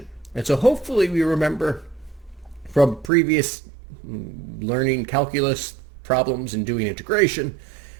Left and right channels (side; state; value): left; drops out; at 3.1 s